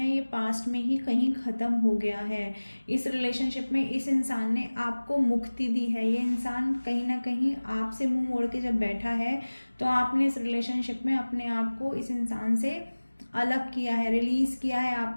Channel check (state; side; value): inverted; both; correlation -1.00